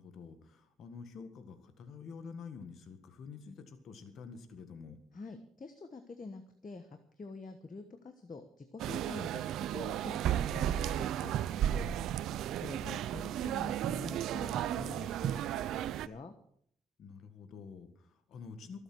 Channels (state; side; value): quieter; left; 7.9 dB